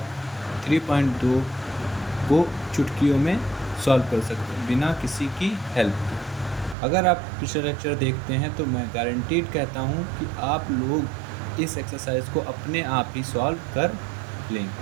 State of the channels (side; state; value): left; drops out; at 6.8 s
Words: 3.2 को चुटकियों में सॉल्व कर सकते हैं बिना किसी की हेल्प के। अगर आप पिछले लेक्चर देखते हैं तो मैं गारंटीड कहता हूँ कि आप लोग इस एक्सरसाइज को अपने आप ही सॉल्व कर